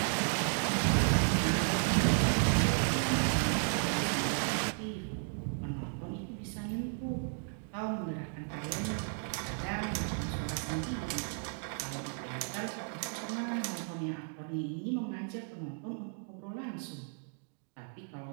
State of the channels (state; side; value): silent; left; 55 dB below the other